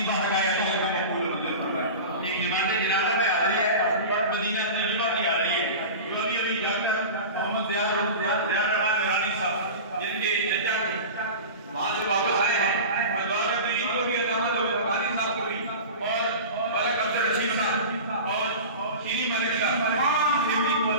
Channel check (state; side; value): inverted; both; correlation -0.31